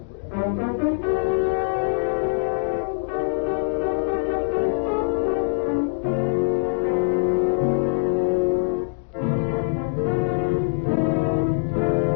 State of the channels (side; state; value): right; silent; digital silence